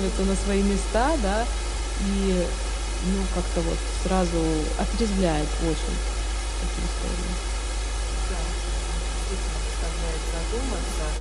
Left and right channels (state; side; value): identical; both; correlation 1.00